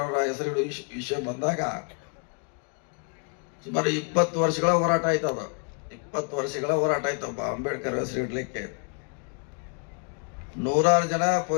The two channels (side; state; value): right; quieter; 37.7 dB